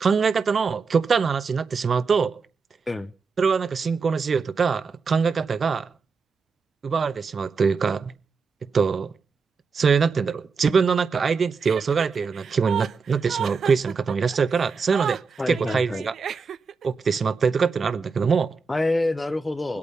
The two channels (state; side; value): quieter; left; 4.9 dB